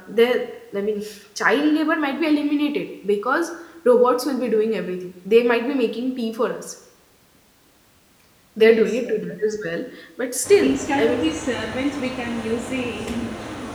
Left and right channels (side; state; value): both; identical; correlation 1.00